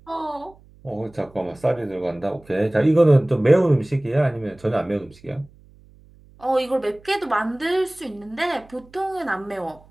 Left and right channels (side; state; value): right; noise; hum, 26 dB below the sound